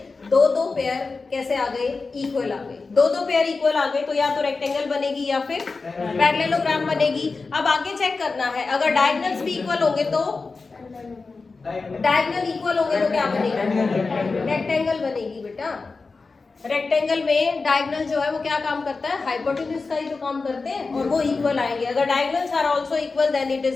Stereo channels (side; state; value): right; quieter; 4.1 dB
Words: 2-2 पेयर कैसे आ गए, इक्वल आ गए। 2-2 पेयर इक्वल आ गए तो या तो रेक्टेंगल बनेगी या फिर पैरेललोग्राम बनेगी। अब आगे चेक करना है, अगर डायगोनल्स भी इक्वल होंगे तो डायगोनल इक्वल होंगे तो क्या बनेगी, रेक्टेंगल बनेगी बेटा। रेक्टेंगल में डायगोनल जो है वो क्या काम करता है, हाइपोटेन्यूज का ही तो काम करते हैं, और वो इक्वल आएंगे। अगर diagonals are also equal then it